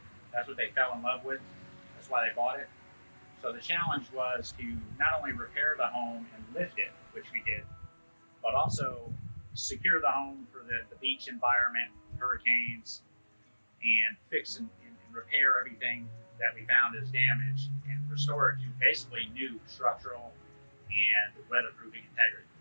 That's what they fell in love with. That's why they bought it. So the challenge was to not only repair the home and lift it, which we did, but also secure the home for the beach environment, hurricanes, and fix and repair everything that we found as damaged and restore it to basically new structural and weatherproofing integrity.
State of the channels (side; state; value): both; inverted; correlation -1.00